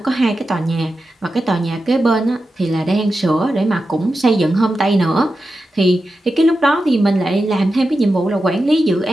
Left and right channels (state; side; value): normal; both; correlation 0.91